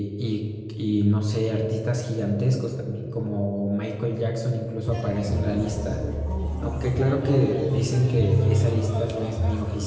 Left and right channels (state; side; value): identical; both; correlation 1.00